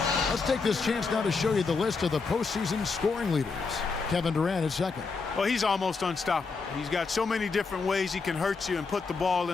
Let's take this chance now to show you the list of the postseason scoring leaders. Kevin Durant is second. Well, he's almost unstoppable. He's got so many different ways he can hurt you and put the ball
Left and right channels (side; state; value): right; quieter; 4.6 dB